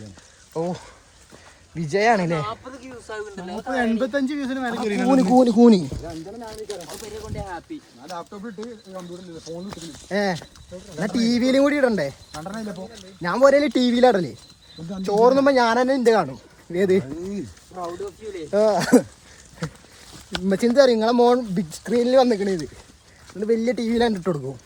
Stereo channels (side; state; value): both; identical; correlation 1.00